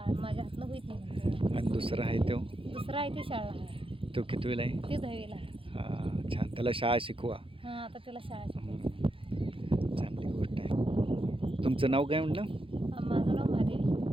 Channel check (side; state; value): left; late; 0.26 ms